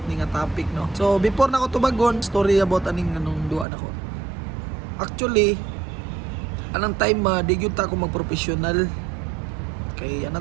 ni nga topic no. So before na ko tubagon, story about aning anong duwa nako. Actually anang time di gyud ta ako mag-professional. Kay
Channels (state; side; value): drops out; left; at 3.7 s